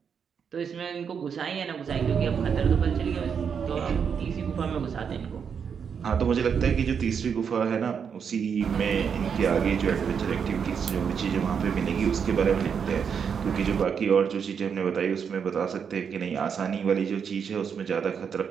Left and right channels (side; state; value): left; quieter; 6.9 dB